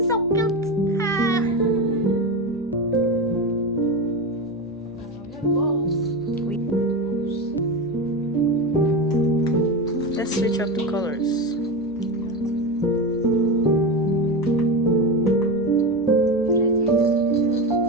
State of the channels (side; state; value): left; noise; hum, 25 dB below the sound